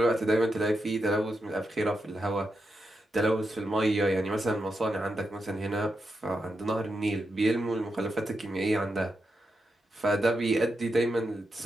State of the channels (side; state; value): both; normal; correlation 0.86